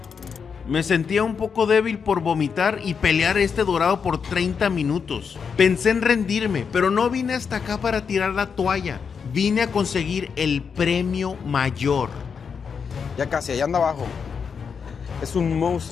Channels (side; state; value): right; quieter; 6.2 dB